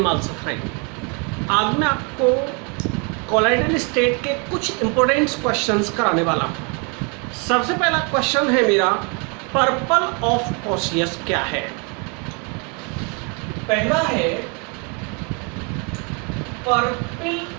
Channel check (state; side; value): quieter; left; 34.1 dB